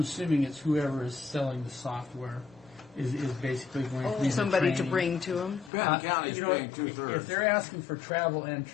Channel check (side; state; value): right; drops out; at 5.7 s